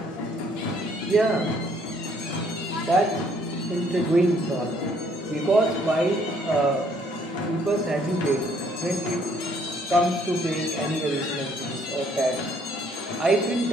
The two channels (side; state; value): both; normal; correlation 0.64